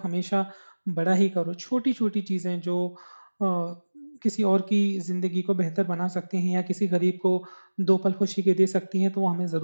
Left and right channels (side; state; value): both; inverted; correlation -1.00